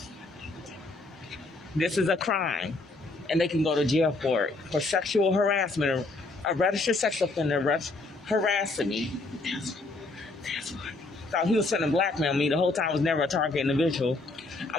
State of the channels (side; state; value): right; quieter; 3.2 dB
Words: This is a crime, and they can go to jail for it. For sexual harassment, a registered sex offender harassing me. Thought he was trying to blackmail me. The whole time I was never a target individual.